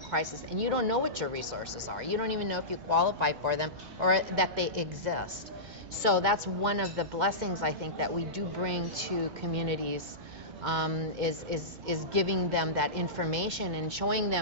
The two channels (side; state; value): both; normal; correlation -0.18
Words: and you don't know what your resources are. You don't even know if you qualify for them or that they exist. So that's one of the blessings I think that we do bring to communities, is giving them that information and showing